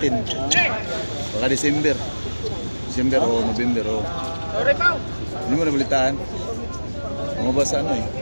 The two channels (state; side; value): inverted; both; correlation -1.00